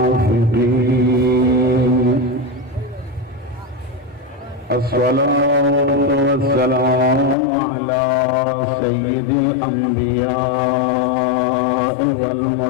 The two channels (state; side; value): drops out; right; at 7.4 s